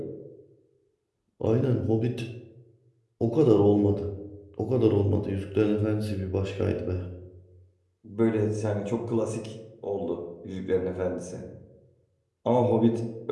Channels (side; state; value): both; identical; correlation 1.00